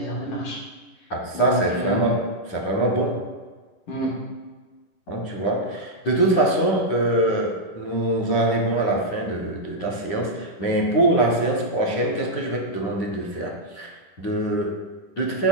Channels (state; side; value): late; right; 10 ms